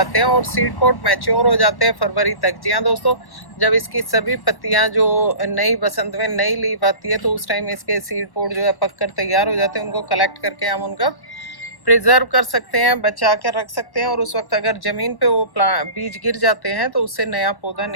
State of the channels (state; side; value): late; right; 1.1 ms